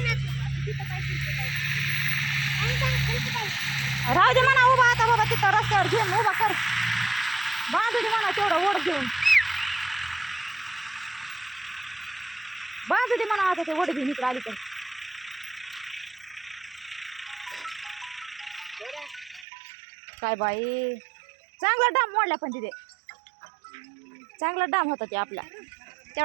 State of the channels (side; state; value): left; drops out; at 19.5 s